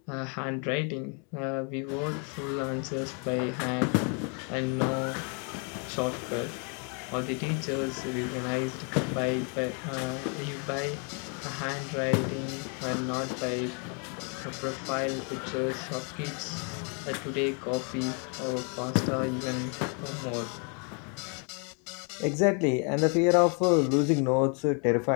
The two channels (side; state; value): right; quieter; 37.9 dB